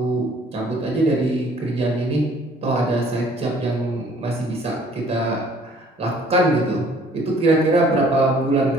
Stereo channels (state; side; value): normal; both; correlation 0.57